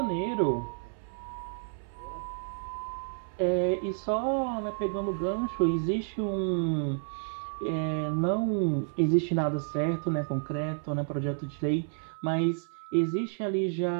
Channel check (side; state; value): left; silent; 58 dB below the other